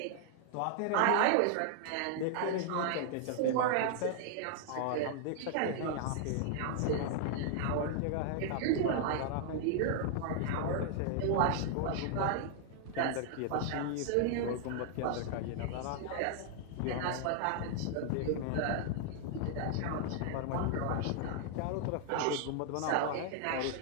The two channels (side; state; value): both; different; correlation -0.01